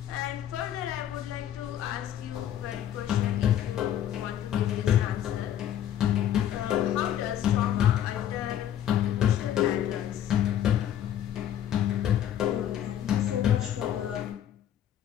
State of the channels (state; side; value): quieter; right; 10.7 dB